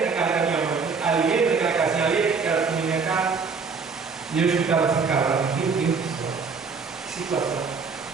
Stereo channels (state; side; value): quieter; left; 5.1 dB